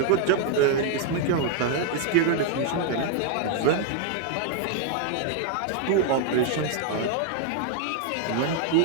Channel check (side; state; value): both; different; correlation 0.00